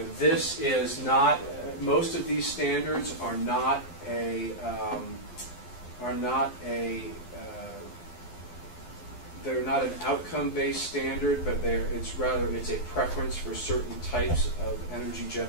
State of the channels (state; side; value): late; right; 12 ms